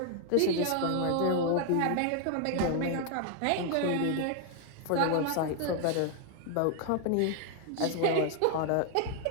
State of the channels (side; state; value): both; different; correlation 0.00